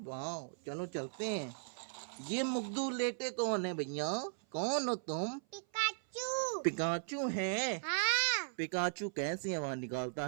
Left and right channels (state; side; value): silent; left; 53 dB below the other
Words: चलो चलते हैं। ये मुग्धू लेटे कौन है भैया? कौन हो तुम? पिकाचू। पिकाचू है? हाँ। पिकाचू कैसी आवाज निकालता